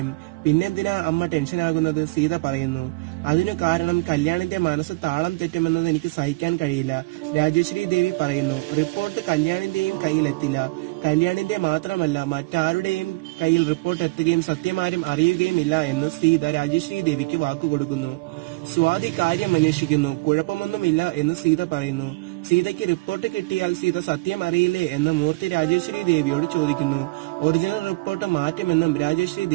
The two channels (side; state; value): left; quieter; 24.6 dB